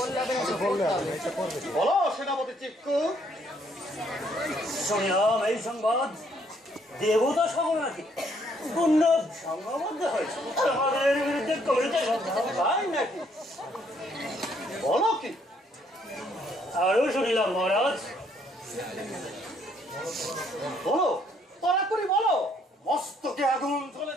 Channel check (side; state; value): both; normal; correlation 0.68